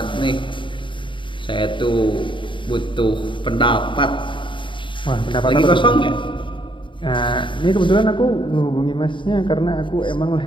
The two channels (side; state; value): right; late; 0.24 ms